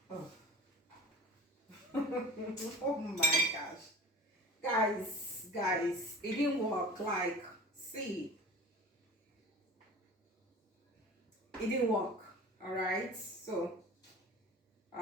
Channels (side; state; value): both; normal; correlation 0.38